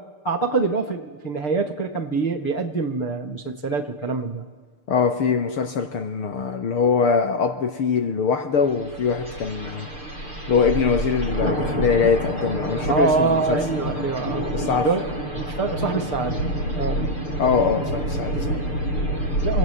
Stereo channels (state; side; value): late; right; 6.7 ms